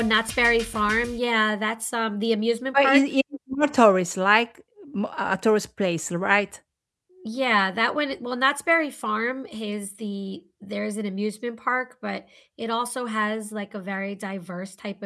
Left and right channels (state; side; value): identical; both; correlation 1.00